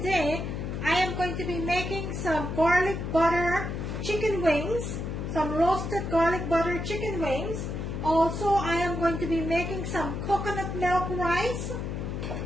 I am going to be making some garlic butter chicken wings, some roasted garlic butter chicken wings. Also, I am going to be making some coconut milk rice,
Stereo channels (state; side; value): noise; left; hum, 4 dB below the sound